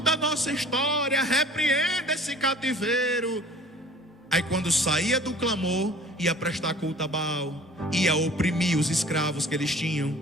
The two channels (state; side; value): normal; both; correlation 0.48